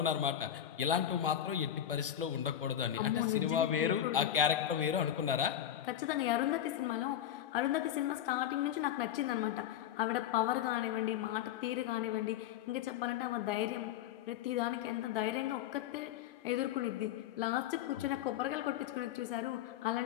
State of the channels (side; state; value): right; quieter; 10.7 dB